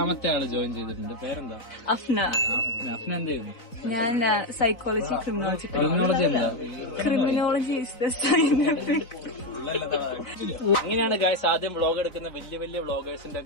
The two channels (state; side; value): late; right; 3.9 ms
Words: ആള് ജോയിൻ ചെയ്തിട്ടുണ്ട്. പേരെന്താ? അഫ്ന. അഫ്ന എന്ത് ചെയ്യുന്നു? ഞാൻ സൈക്കോളജി ക്രിമിനോളജി. ക്രിമിനോളജി എന്താ? Criminology is the scientific. ഇങ്ങനെയാണ് ഗൈസ് ആദ്യം വ്ളോഗ് എടുക്കുന്ന വലിയ വലിയ വ്ളോഗേഴ്സിന്റെ